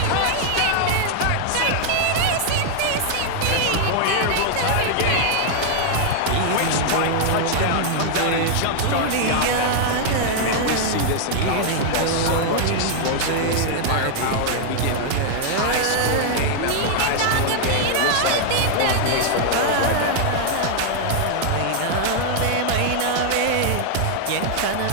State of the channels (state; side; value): different; both; correlation 0.00